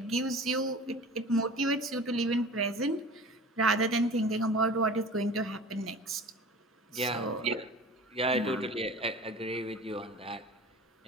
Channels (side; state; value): both; normal; correlation 0.39